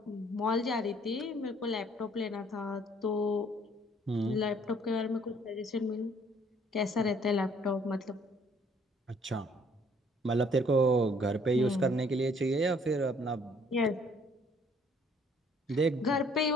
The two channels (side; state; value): both; normal; correlation 0.61